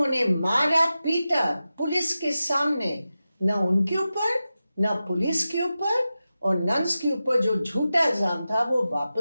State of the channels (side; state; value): both; inverted; correlation -0.93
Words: मारा पीटा पुलिस के सामने, न उनके ऊपर न पुलिस के ऊपर और नन्स के ऊपर जो झूठा इल्जाम था वो